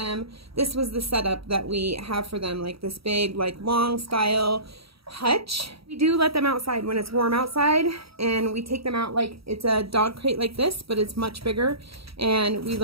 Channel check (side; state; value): left; late; 0.76 ms